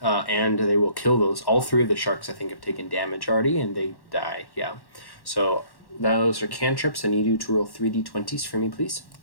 and they will kill those. All 3 of the sharks, I think, have taken damage already, and they die. Yeah. So those are cantrips. I need you to roll 3d20s for me, please.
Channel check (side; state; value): right; late; 1.1 ms